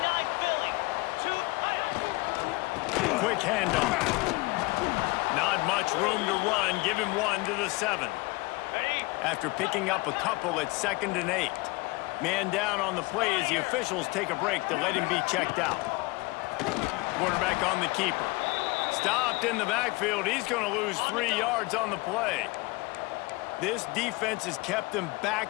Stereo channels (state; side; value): quieter; right; 24.1 dB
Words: Quick handoff. Not much room to run. Give him 1 to the 7. After picking up a couple at 2nd and 8. Man down on the play as the officials take a break to let him be checked out. Quarterback on the keeper. Stopped in the backfield. He's going to lose 3 yards on the play. This defense has kept them